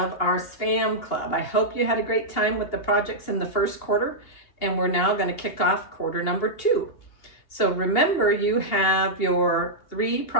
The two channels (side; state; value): right; late; 2.8 ms